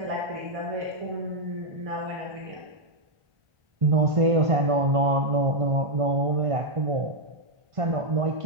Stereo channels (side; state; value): left; late; 1.5 ms